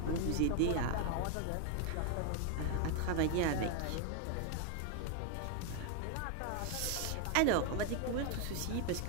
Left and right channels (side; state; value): both; different; correlation 0.01